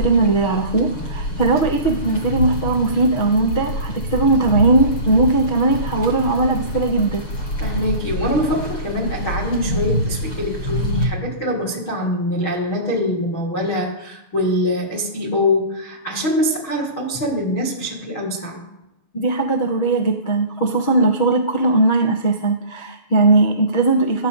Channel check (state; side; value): late; right; 6.3 ms